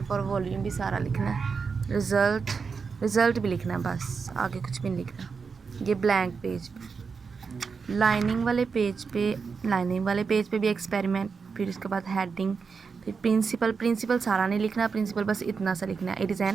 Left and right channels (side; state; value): left; quieter; 5.4 dB